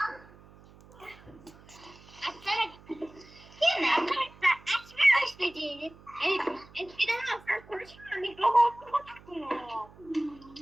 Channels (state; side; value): noise; right; hum, 23 dB below the sound